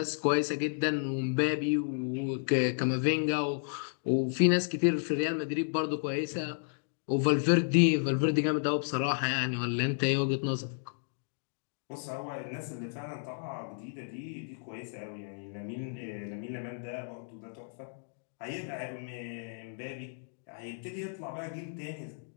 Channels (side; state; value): right; silent; digital silence